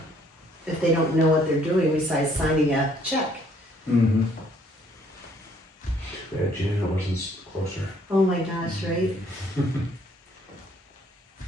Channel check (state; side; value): normal; both; correlation 0.63